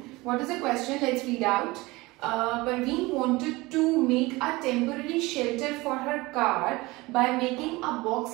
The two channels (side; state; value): left; quieter; 21.8 dB